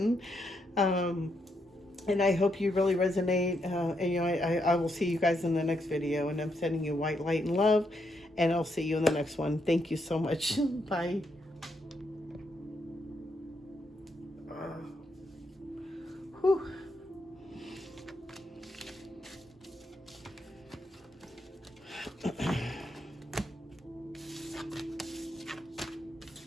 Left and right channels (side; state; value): both; normal; correlation 0.78